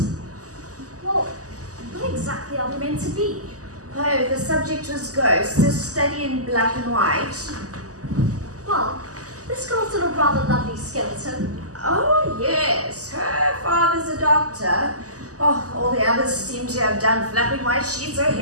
Well, what exactly are we meant to be? Oh, the subject was ghosts, a study in black and white. Well, this girl's got a rather lovely skeleton. Oh, yes. Her father's a doctor. Oh, all the others seem to have done flapping white sheets or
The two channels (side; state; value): left; late; 0.67 ms